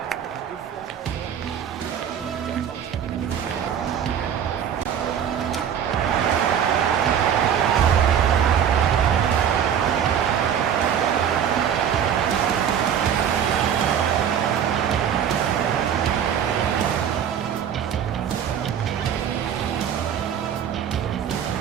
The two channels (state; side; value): quieter; left; 8.7 dB